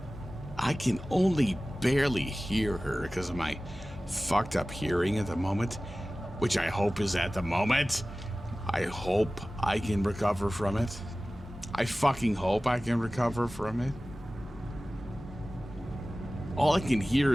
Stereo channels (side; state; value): both; normal; correlation 0.97